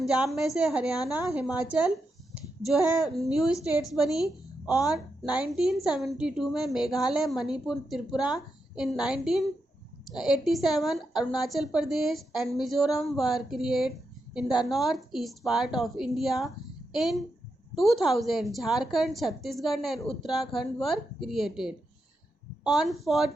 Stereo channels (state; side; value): normal; both; correlation 0.86